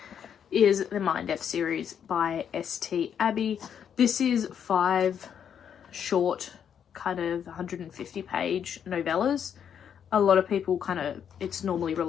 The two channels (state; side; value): quieter; right; 8.3 dB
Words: is the Mind F series by S.T. Abbey. This is 5 short, kind of 150-page novellas. A lot of people it's normally